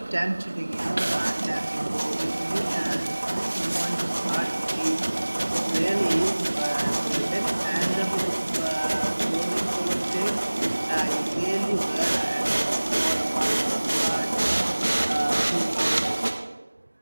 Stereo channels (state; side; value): inverted; both; correlation -1.00